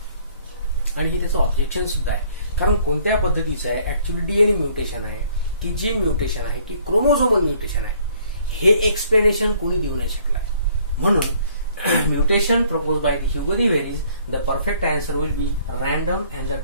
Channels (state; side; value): inverted; both; correlation -0.60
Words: आणि हे त्याचं ऑब्जेक्शन सुद्धा आहे. कारण कोणत्या पद्धतीचं आहे? ऍक्च्युअली डीएनए म्युटेशन आहे की जीन म्युटेशन आहे की क्रोमोझोमल म्युटेशन आहे, हे एक्सप्लेनेशन कोणी देऊ नाही शकलाय. म्हणून mutation propose by the Hugo de Vries, the perfect answer will be random and the